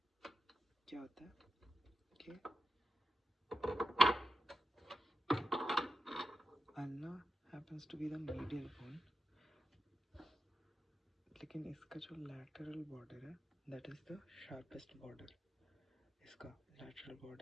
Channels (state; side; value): normal; both; correlation 0.88